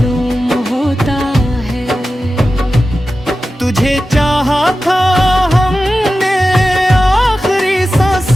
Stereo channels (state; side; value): normal; both; correlation 0.93